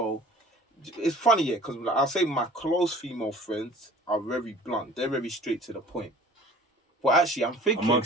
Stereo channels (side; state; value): both; normal; correlation 0.47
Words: it's funny, yeah, because like, I'll say my close female friends are very blunt. They're very straight to the point. But actually, I'm thinking